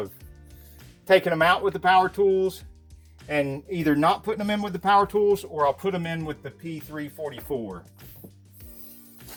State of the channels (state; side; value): identical; both; correlation 1.00